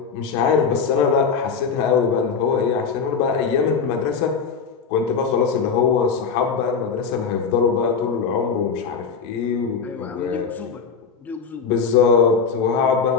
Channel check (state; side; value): quieter; right; 5.8 dB